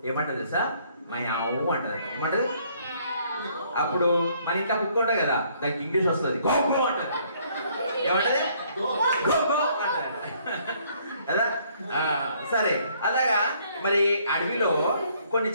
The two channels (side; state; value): both; inverted; correlation -0.64